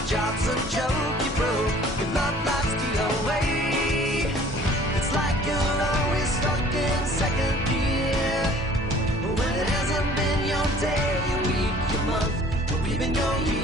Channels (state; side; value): normal; both; correlation 0.52